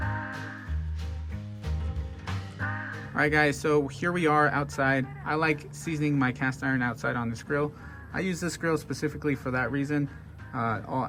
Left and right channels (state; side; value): identical; both; correlation 1.00